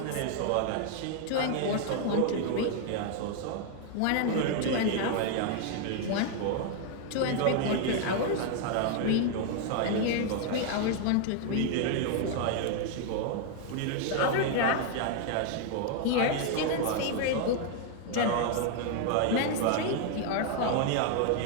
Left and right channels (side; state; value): both; different; correlation 0.00